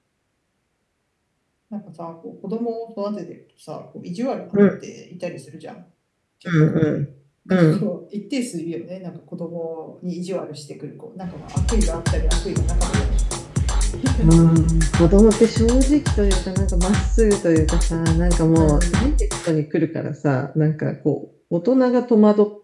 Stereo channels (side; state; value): both; identical; correlation 1.00